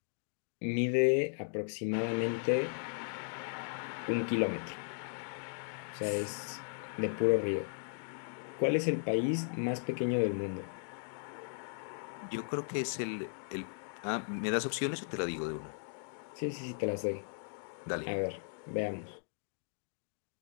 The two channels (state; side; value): silent; right; digital silence